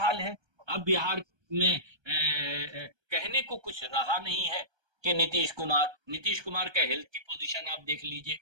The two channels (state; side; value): late; left; 1.3 ms